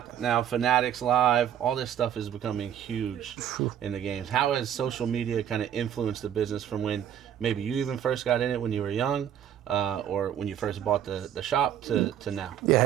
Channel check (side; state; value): left; quieter; 9.9 dB